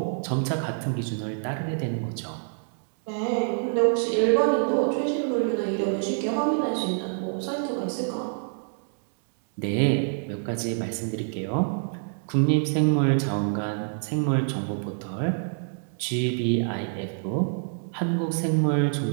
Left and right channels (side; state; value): left; silent; digital silence